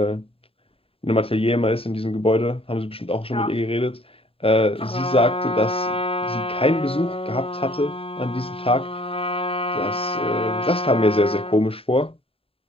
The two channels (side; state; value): right; late; 0.27 ms